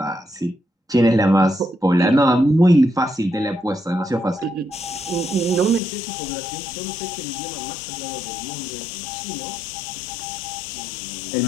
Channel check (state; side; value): drops out; right; at 5.8 s